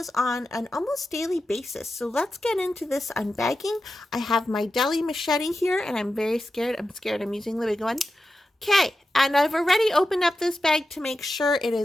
on an almost daily basis. So let's get into this unbagging. I have my deli machete here and I'm very scared. I'm using the big one. Okay, and I've already opened up this bag to make sure it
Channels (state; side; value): normal; both; correlation 0.91